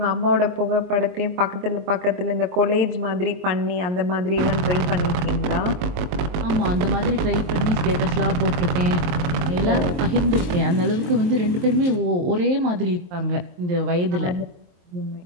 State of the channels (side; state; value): left; late; 23 ms